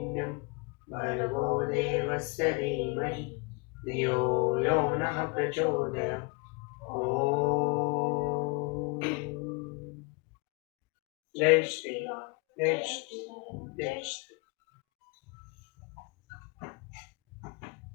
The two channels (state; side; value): quieter; right; 30.8 dB